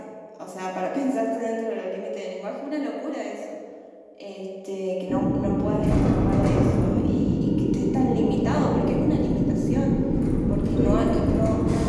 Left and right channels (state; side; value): identical; both; correlation 1.00